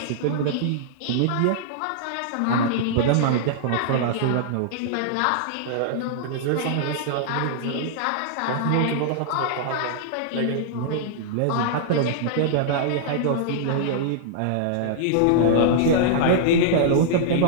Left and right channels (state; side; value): different; both; correlation -0.01